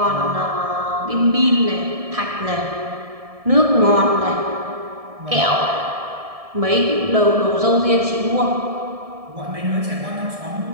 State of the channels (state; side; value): late; left; 1.7 ms